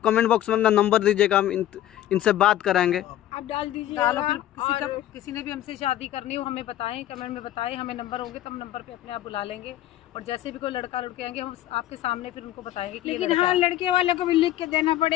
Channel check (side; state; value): right; quieter; 13.2 dB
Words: कमेंट बॉक्स में अपना नंबर दीजिएगा, हम इनसे बात कराएंगे। आप डाल दीजिए। डालो, फिर किसी ने भी हमसे शादी करनी हो हमें बताएं, कमेंट में बताएं, हमें नंबर होंगे तो हम नंबर पे अपने आप बुला लेंगे। और जैसे भी कोई लड़का लड़के आएंगे हम आपके सामने फिर उनको बताएंगे कि ये लेकिन लड़का हाँ, है। लड़के वाले को भी लिख के देना